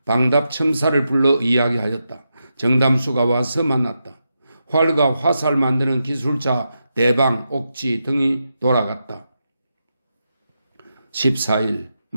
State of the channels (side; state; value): both; inverted; correlation -0.87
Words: 방답 첨사를 불러 이야기하였다. 정담수가 와서 만났다. 활과 화살 만드는 기술자 대방, 옥지 등이 돌아갔다. 14일